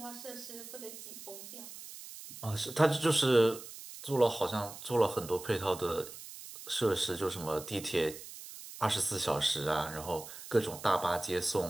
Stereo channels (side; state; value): right; noise; hiss, 13 dB below the sound